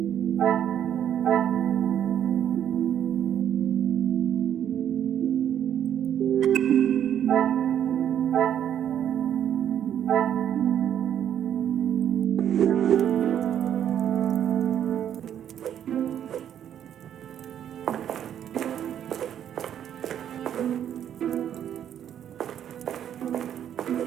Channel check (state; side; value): quieter; left; 9.8 dB